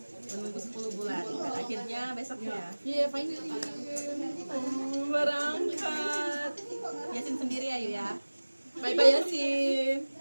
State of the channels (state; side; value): inverted; both; correlation -1.00